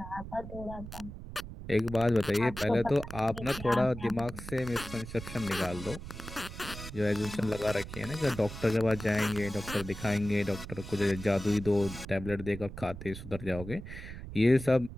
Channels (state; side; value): noise; right; rumble, 11 dB below the sound